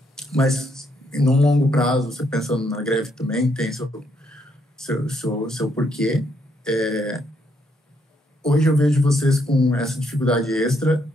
Mas, num longo prazo, você pensando na greve também, tem seu porquê. Hoje eu vejo vocês com essa dificuldade extra.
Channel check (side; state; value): both; normal; correlation 0.74